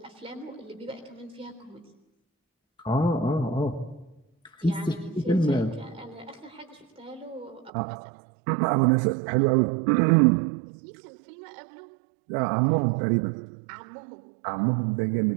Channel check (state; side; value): drops out; left; at 7.7 s